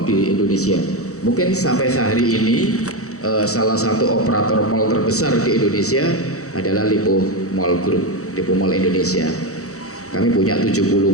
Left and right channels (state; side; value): late; right; 0.65 ms